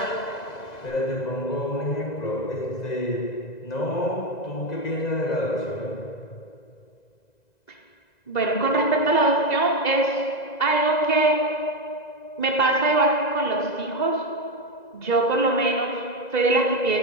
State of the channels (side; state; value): right; late; 2.0 ms